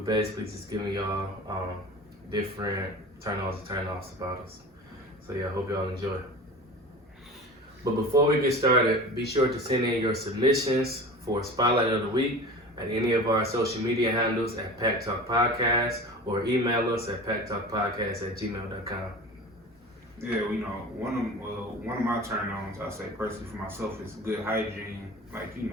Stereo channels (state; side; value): normal; both; correlation 0.35